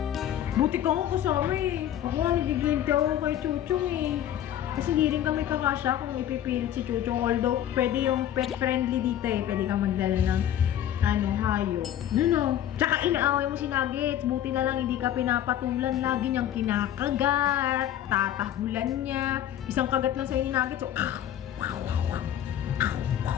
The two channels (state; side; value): quieter; right; 11.2 dB